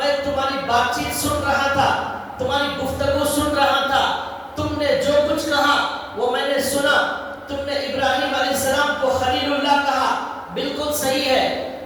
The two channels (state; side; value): identical; both; correlation 1.00